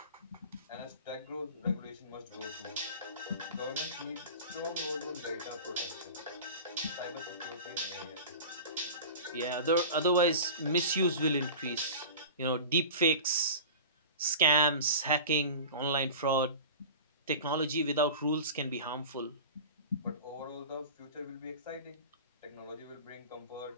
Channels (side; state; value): both; inverted; correlation -0.36